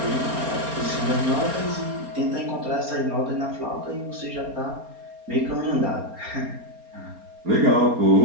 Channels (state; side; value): late; left; 4.3 ms